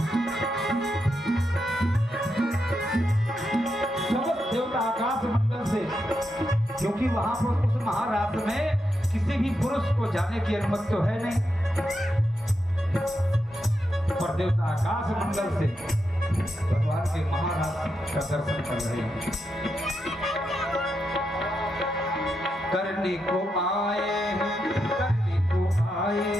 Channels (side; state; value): both; normal; correlation 0.84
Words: समस्त देवता आकाश मंडल से, क्योंकि वहां पर उस महाराज में किसी भी पुरुष को जाने की अनुमति तो है नहीं, पर देवता आकाश मंडल से भगवान के महाराज का दर्शन कर रहे हैं। करने को आए हैं, करने को आए